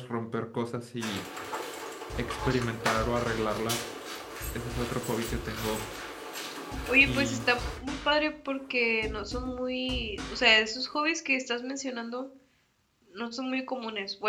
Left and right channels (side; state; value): both; identical; correlation 1.00